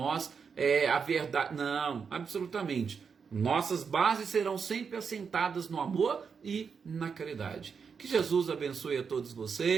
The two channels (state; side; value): quieter; left; 6.0 dB